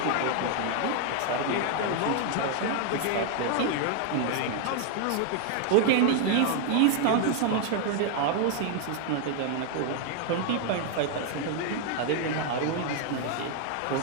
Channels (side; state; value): both; different; correlation 0.00